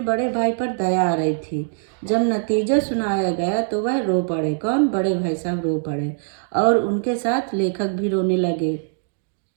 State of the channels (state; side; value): silent; left; digital silence